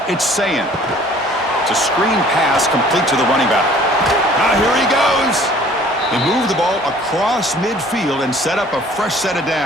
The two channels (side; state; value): both; normal; correlation 0.53